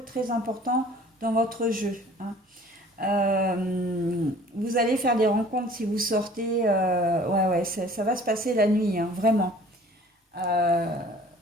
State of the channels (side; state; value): both; normal; correlation 0.50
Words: très important dans votre jeu, hein. Vous allez faire des rencontres si vous sortez. Ouais, ouais, ça va se passer la nuit, hein, vraiment. Euh,